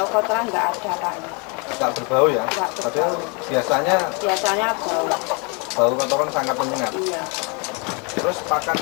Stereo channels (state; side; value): quieter; right; 32.7 dB